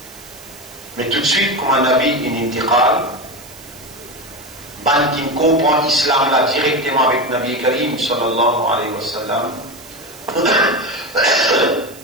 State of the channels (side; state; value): right; noise; hiss, 19 dB below the sound